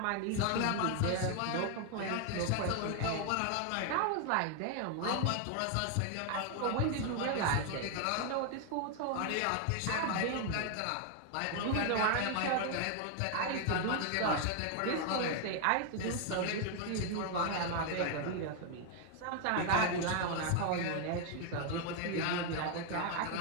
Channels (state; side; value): different; both; correlation 0.00